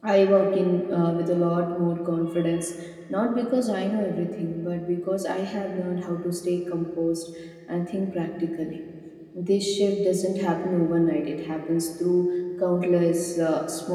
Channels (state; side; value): identical; both; correlation 1.00